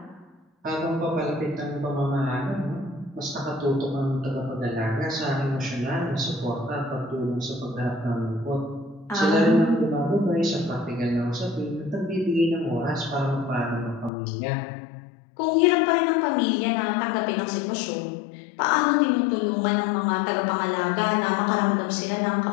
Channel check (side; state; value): right; drops out; at 14.1 s